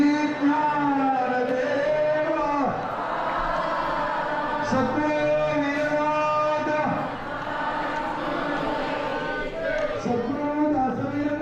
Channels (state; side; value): identical; both; correlation 1.00